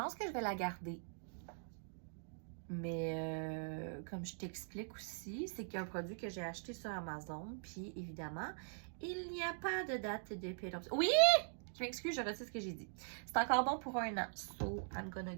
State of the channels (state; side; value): silent; left; digital silence